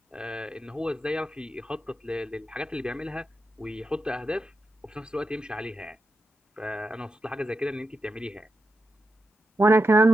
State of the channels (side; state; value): both; normal; correlation 0.87